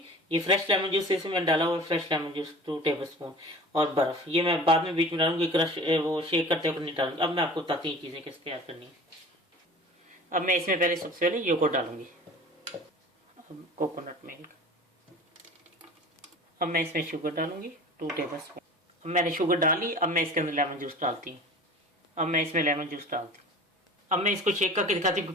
ये फ्रेश लेमन जूस इसमें मैंने डाला हुआ fresh lemon juice 2 table spoon, और बर्फ़ ये मैं बाद में बीच में डालूंगी, क्रश वो शेक करते वक्त नहीं डालूंगी। अब मैं आपको बताती हूँ चीज़ें कैसे तैयार करनी है। अब मैं इसमें पहले सबसे पहले योगर्ट डालूंगी, अब कोकोनट मिल्क, अब मैं इसमें शुगर डालूंगी 2 टेबल स्पून। अब मैंने शुगर डाली, अब मैं इसके अंदर लेमन जूस डालती हूँ। अब मैं इसमें लेमन जूस डालती हूँ। अब मैं इसको शेक करके दिखाती हूँ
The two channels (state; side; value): normal; both; correlation 0.40